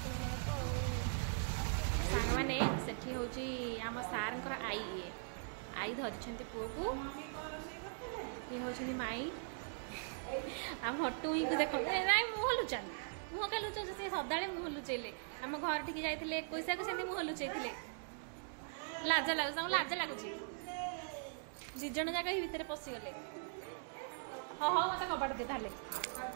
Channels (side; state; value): left; silent; digital silence